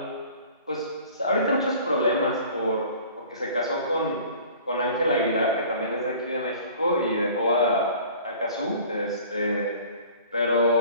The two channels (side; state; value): both; inverted; correlation -0.48